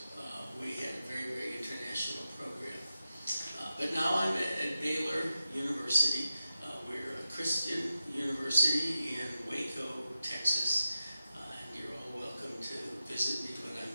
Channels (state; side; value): inverted; both; correlation -0.92